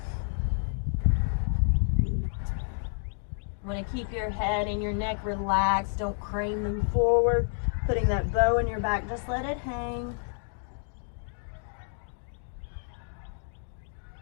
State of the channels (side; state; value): right; silent; digital silence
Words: You want to keep your head and your neck relaxed. Don't crane them forward. Putting that bow in your back, just let it hang.